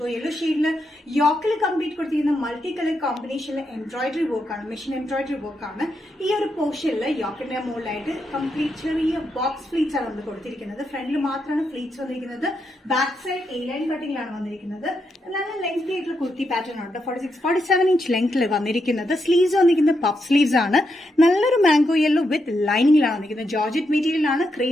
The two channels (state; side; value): normal; both; correlation 0.82